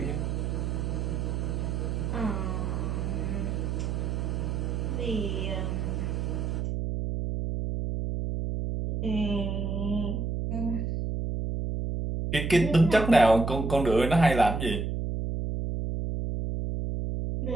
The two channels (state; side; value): noise; right; hum, 1 dB below the sound